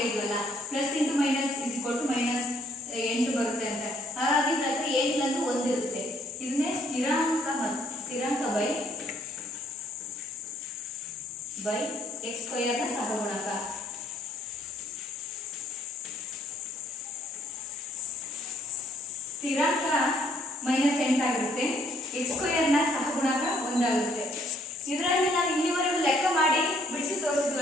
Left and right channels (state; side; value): normal; both; correlation 0.65